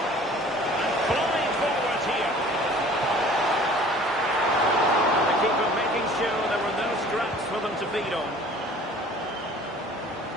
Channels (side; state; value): both; normal; correlation 0.49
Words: And flying forward here. The keeper making sure there were no scraps for them to feed on.